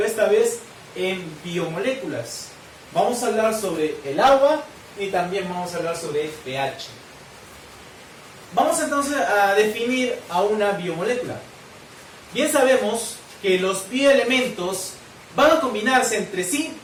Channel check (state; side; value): identical; both; correlation 1.00